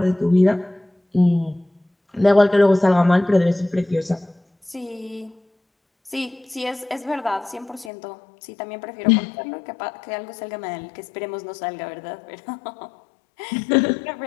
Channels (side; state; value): right; drops out; at 7.9 s